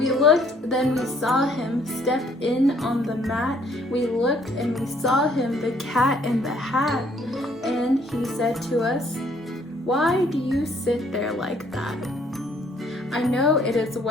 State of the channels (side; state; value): both; normal; correlation 0.63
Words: looked, then we saw him step in on the mat. We looked and we saw him, the cat in the hat. And he said to us, "Why do you sit there like that? I know it is